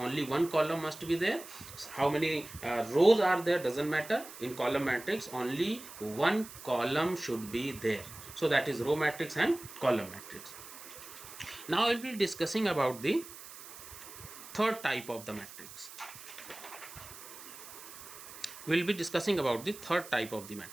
one column must be there. How many rows are there, doesn't matter. In column matrix, only one column should be there. So that is row matrix and column matrix. Now I will be discussing about the third type of the matrix. We will be discussing about the third type of the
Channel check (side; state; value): right; noise; hiss, 15 dB below the sound